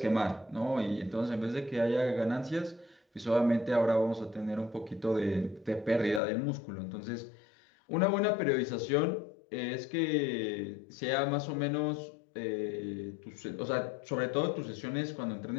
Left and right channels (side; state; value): right; drops out; at 6.2 s